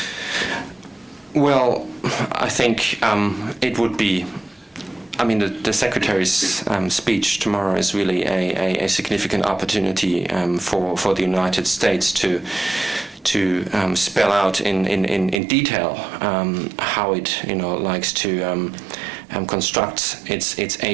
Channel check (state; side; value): drops out; left; at 15.4 s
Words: Well, I think it would be, I mean, the Secretary's speech tomorrow is really a significant opportunity for the United States to spell out in detail how it likes to construct its